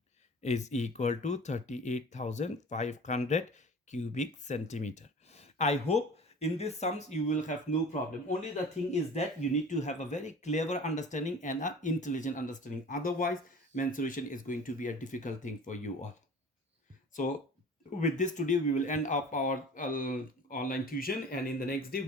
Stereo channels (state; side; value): normal; both; correlation 0.41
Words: is equal to 38,500 cubic centimeter. I hope in these sums you will have no problem. Only the thing is that you need to have a very clever understanding and an intelligent understanding. Otherwise, mensuration is going to be a difficult thing for you all. So with this today we will end up our online tuition, and in the next day